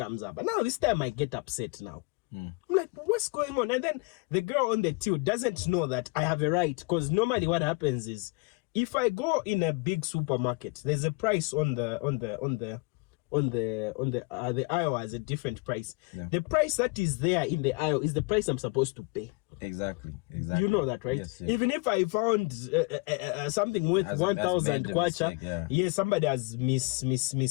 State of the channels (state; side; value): quieter; right; 28.0 dB